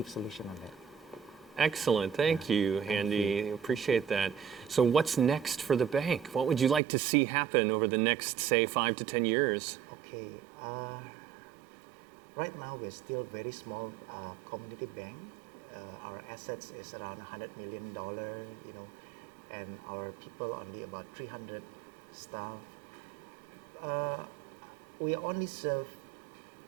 solution on that. Excellent. Thank you, Handy. Appreciate that. So what's next for the bank? What would you like to see happen over the next, say, 5 to 10 years? Okay. Right now, we're still very small community bank. Our assets is around $100 million, you know, and our people only about 300 staff. We only serve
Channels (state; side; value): drops out; left; at 6.8 s